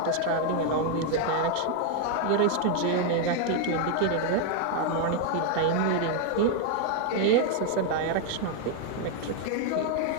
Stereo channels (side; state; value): both; different; correlation 0.00